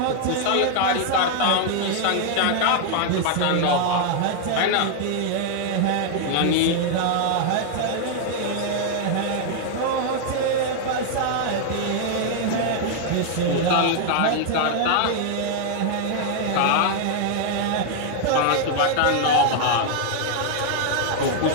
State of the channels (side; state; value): both; different; correlation 0.00